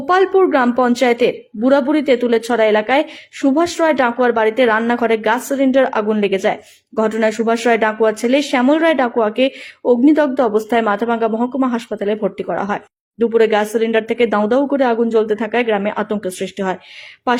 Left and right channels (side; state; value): both; identical; correlation 1.00